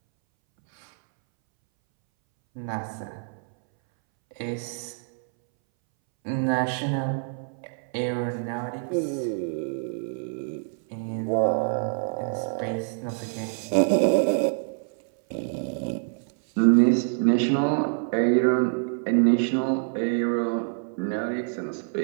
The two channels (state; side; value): silent; left; 61 dB below the other